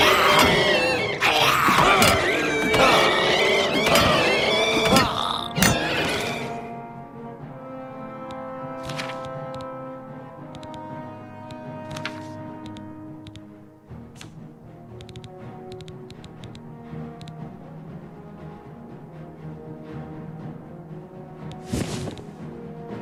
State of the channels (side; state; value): both; identical; correlation 1.00